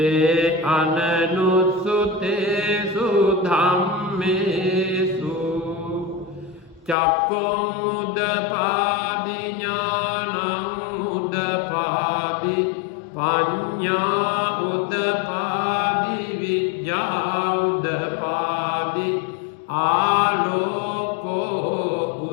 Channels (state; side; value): drops out; right; at 7.0 s